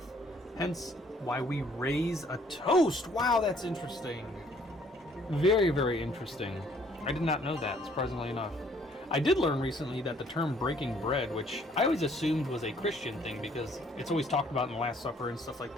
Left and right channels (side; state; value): both; normal; correlation 0.62